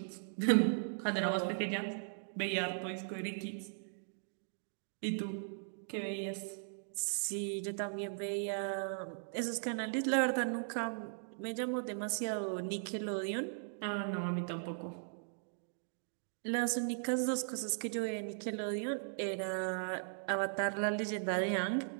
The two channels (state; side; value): silent; left; digital silence